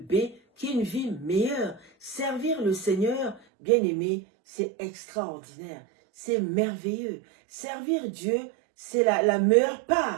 qui est une vie meilleure. Servir le Seigneur, bien-aimé, c'est extraordinaire, c'est merveilleux. Servir Dieu, c'est la meilleure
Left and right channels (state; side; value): drops out; left; at 3.4 s